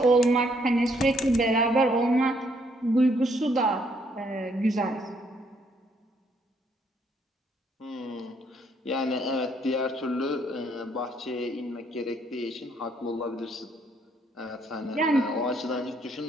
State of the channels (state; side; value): normal; both; correlation 0.69